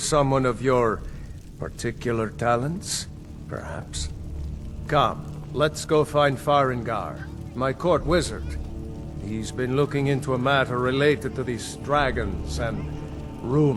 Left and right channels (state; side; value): identical; both; correlation 1.00